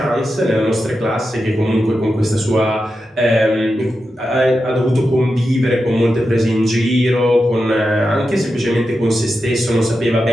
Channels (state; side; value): normal; both; correlation 0.89